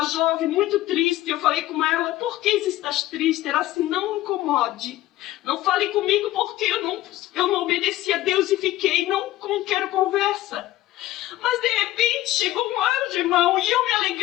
jovem muito triste. Eu falei com ela, por que estás triste? Ela assim, não me incomode, não fale comigo, porque eu não obedeci a Deus e fiquei, não quero conversa. Mas de repente chegou um anjo, irmão, e eu me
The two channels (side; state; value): right; quieter; 15.5 dB